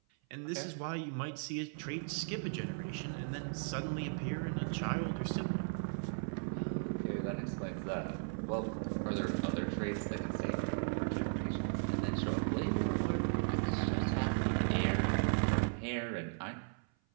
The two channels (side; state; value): left; silent; 53 dB below the other